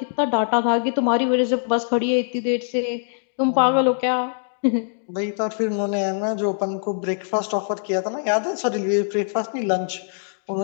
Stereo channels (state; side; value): silent; right; digital silence